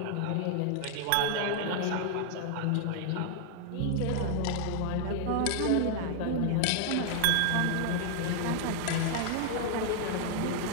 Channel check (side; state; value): both; different; correlation 0.00